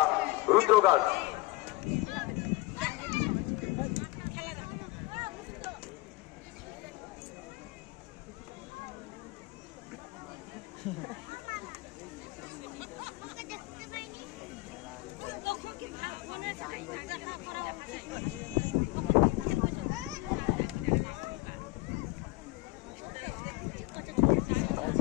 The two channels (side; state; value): right; quieter; 20.9 dB